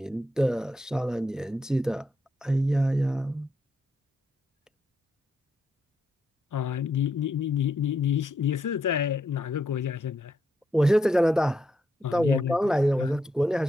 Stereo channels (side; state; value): both; normal; correlation 0.79